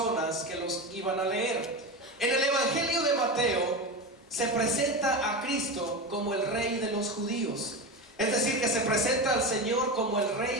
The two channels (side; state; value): both; normal; correlation 0.22